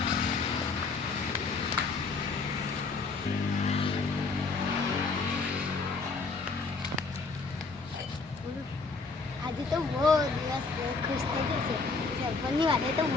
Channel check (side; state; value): right; quieter; 4.2 dB